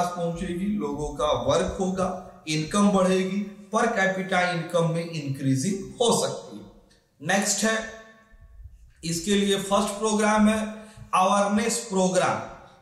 पहुंचेगी, लोगों का वर्क होगा, इनकम बढ़ेगी, पर कैपिटा इनकम में इंक्रीजिंग हो सकती है। नेक्स्ट है इसके लिए फर्स्ट प्रोग्राम है अवेयरनेस प्रोग्राम।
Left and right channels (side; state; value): both; identical; correlation 1.00